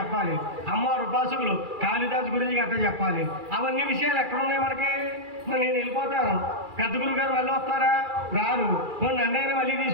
అమ్మవారి ఉపాసకులు కాళిదాసు గురించి గట్ట చెప్పాలి. అవన్నీ విషయాలు ఎక్కడ ఉన్నాయి మనకి? నేను వెళ్ళిపోతాను, పెద్ద గురువు గారు మళ్ళీ వస్తారా? రారు. నన్నైనా మళ్ళీ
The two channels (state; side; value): late; left; 2.4 ms